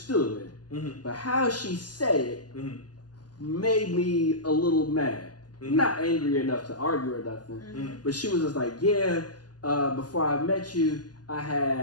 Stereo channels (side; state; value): right; late; 0.69 ms